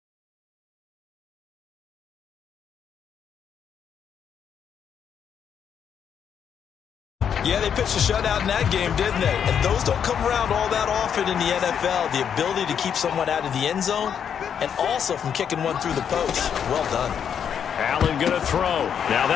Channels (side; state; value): right; quieter; 8.0 dB